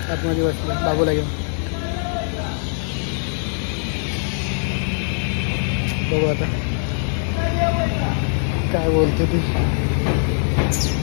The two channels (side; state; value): right; silent; 65 dB below the other